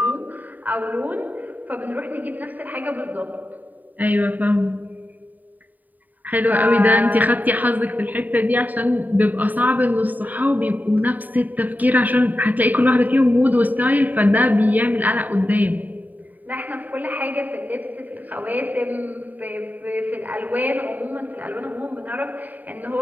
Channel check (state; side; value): late; left; 0.084 ms